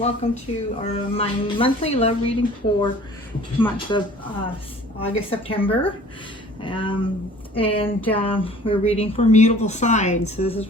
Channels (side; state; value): both; normal; correlation 0.49